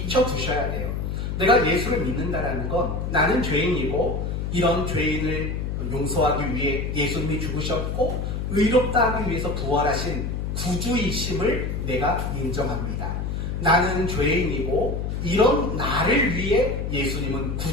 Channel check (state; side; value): noise; left; hum, 3 dB below the sound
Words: 돼요. 내가 예수를 믿는다라는 건 나는 죄인이고 이런 죄인을 용서하기 위해 예수님이 죽으셨고 의롭다 하기 위해서 부활하신 구주이심을 내가 인정합니다. 나는 죄인이고 이런 나를 위해 예수님은